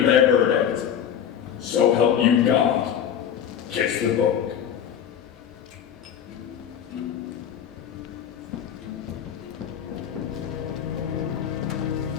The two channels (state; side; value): quieter; right; 9.0 dB